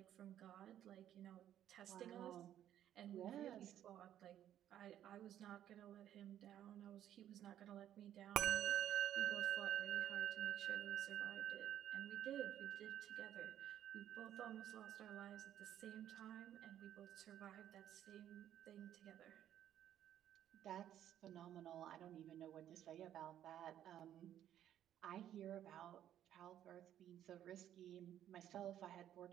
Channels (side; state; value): left; quieter; 11.1 dB